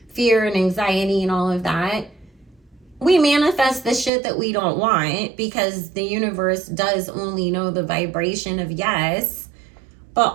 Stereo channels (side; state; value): left; drops out; at 4.1 s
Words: fear and anxiety and all of that, we manifest the shit that we don't want, because the universe does only know the vibration of yes.